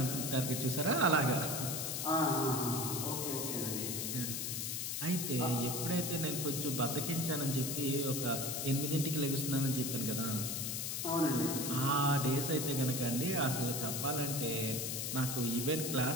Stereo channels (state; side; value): noise; left; hiss, 2 dB below the sound